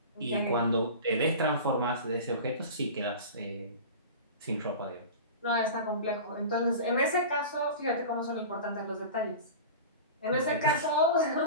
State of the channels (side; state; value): both; inverted; correlation -0.33